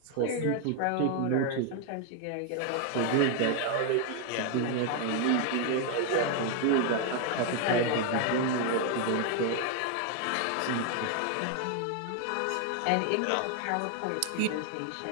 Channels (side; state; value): both; different; correlation 0.00